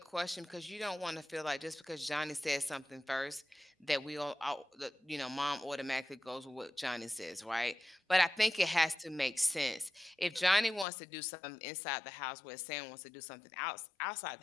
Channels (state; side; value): drops out; right; at 10.9 s